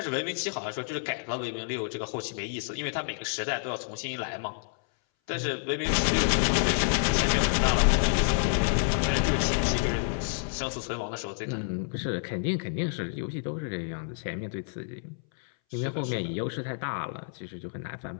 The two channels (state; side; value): silent; right; 59 dB below the other